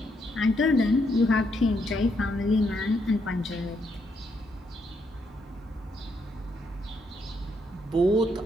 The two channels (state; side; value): normal; both; correlation 0.76